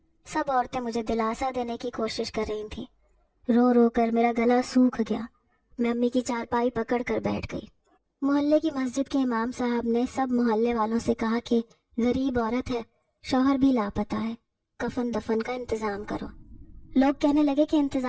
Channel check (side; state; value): both; identical; correlation 1.00